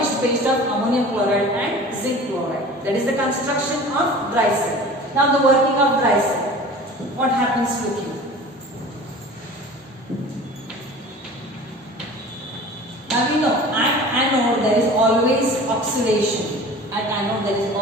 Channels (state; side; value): normal; both; correlation 0.41